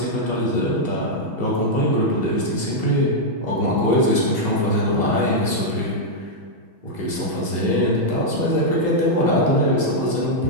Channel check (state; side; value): late; left; 6.2 ms